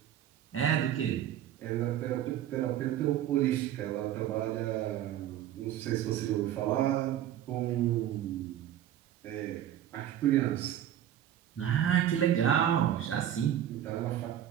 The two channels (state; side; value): quieter; left; 11.2 dB